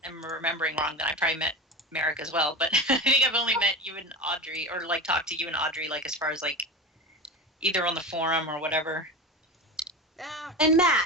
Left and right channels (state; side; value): normal; both; correlation 0.26